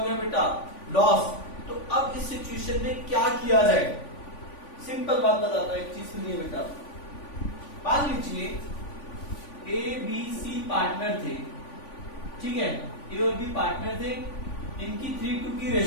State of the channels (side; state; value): right; late; 3.5 ms